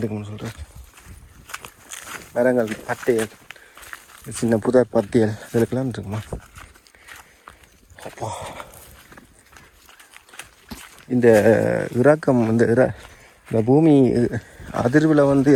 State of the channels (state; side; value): identical; both; correlation 1.00